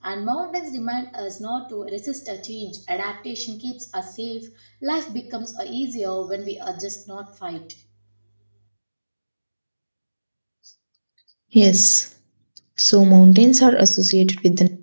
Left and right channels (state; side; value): inverted; both; correlation -1.00